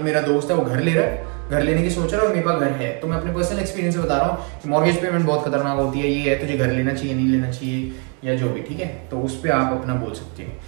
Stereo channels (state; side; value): quieter; left; 37.8 dB